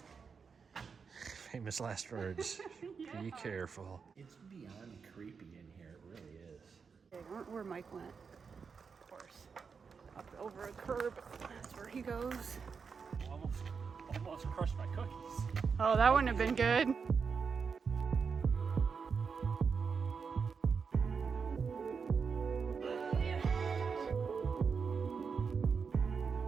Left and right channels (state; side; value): quieter; left; 5.7 dB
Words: Famous last words. Yeah. Be careful. It's beyond creepy in here, it really is. Okay, where Mike went. Of course. Up over a curb. That's where he goes. Almost crushed my cookies. Oh, that wouldn't have been good.